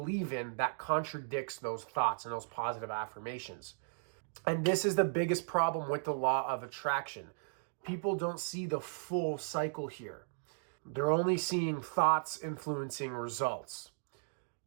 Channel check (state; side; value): silent; left; digital silence